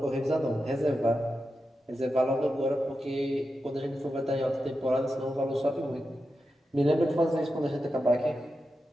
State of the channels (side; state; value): both; normal; correlation 0.89